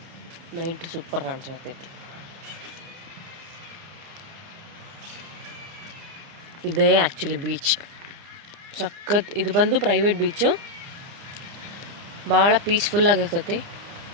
Night super ಕಾಣಿಸ್ತೈತಿ. ಇದೇ ಆ್ಯಕ್ಚುಲಿ ಬೀಚ್ ಸಖತ್. ಇದು ಬಂದು ಪ್ರೈವೇಟ್ ಬೀಚು, ಭಾಳ ಪೀಸ್ಫುಲ್ಲಾಗಿರ್ತೈತಿ.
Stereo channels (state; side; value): late; left; 30 ms